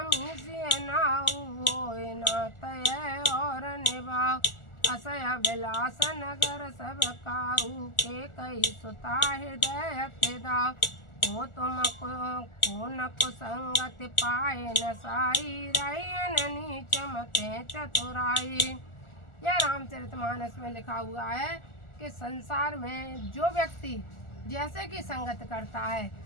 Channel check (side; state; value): right; late; 1.4 ms